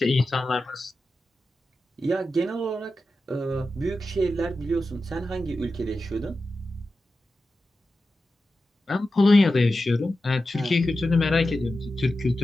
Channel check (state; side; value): normal; both; correlation 0.92